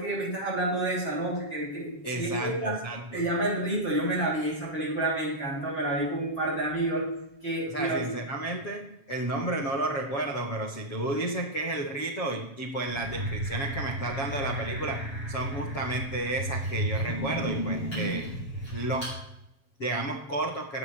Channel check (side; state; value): right; late; 7.3 ms